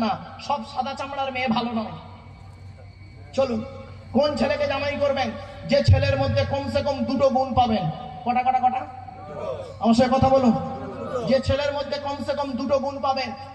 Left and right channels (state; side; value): identical; both; correlation 1.00